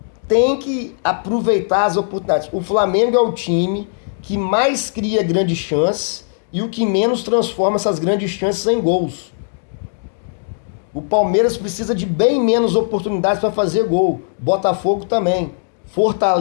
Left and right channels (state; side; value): silent; right; 67 dB below the other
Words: Tem que aproveitar as oportunidades. O Flamengo é o time que mais cria grandes chances e o que menos transforma essas grandes chances em gols. O Palmeiras precisa de bem menos oportunidades para fazer gol. Botafogo também.